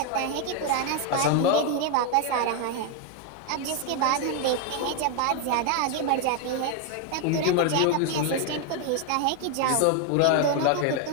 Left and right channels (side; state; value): both; different; correlation 0.01